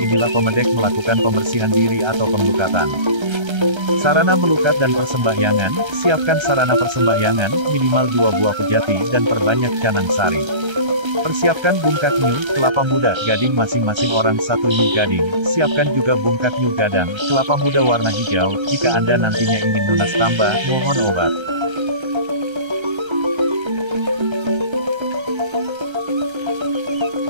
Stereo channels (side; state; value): left; late; 1.3 ms